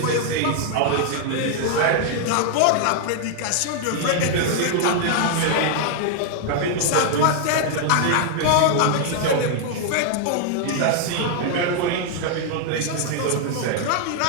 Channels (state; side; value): different; both; correlation 0.00